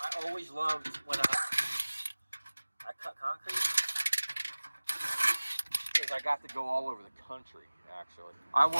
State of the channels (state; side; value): inverted; both; correlation -1.00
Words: I always loved when I cut concrete, is I got to go all over the country, actually. I